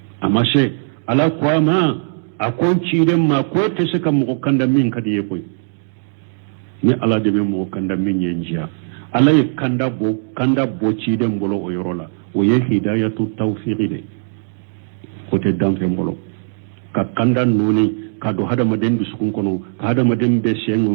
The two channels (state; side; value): silent; left; digital silence